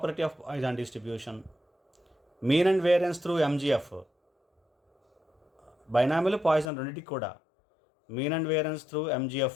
of Poisson distribution, mean and variance through MGF. Binomial Poisson రెండింటికి కూడా mean and variance through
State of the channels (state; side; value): drops out; right; at 6.7 s